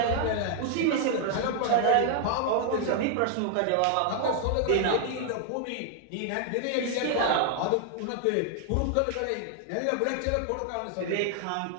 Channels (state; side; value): different; both; correlation 0.00